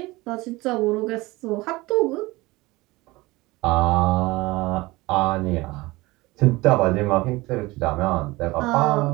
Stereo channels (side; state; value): left; quieter; 21.1 dB